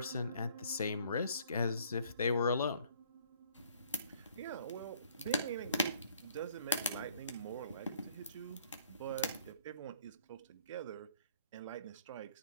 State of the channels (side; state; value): both; inverted; correlation -0.60